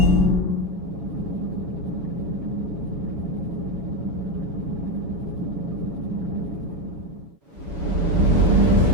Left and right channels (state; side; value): late; left; 7.6 ms